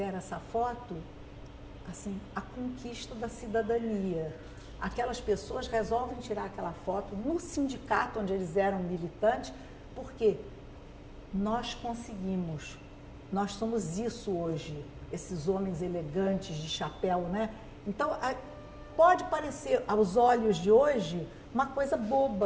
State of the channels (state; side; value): identical; both; correlation 1.00